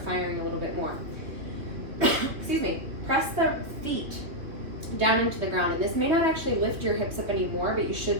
firing a little bit more. Excuse me. Press the feet down into the ground, and this may not actually lift your hips up anymore, but you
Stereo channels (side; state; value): left; late; 3.0 ms